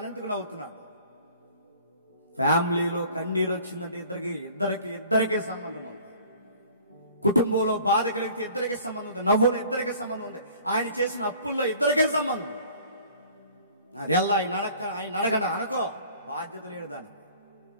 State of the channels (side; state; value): both; inverted; correlation -0.50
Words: నవ్వుతున్నాడు? ఫ్యామిలీలో కన్నీరు వచ్చిందంటే ఇద్దరికి సంబంధం ఉంది. కుటుంబంలో బాధ కలిగితే ఇద్దరికి సంబంధం ఉంది. నవ్వులో ఇద్దరికి సంబంధం ఉంది. ఆయన చేసిన అప్పుల్లో ఇద్దరికే సంబంధం ఉంది. అది ఎలా ఆయన అడగండి అనుకో, బాధ్యత లేడు దానికి.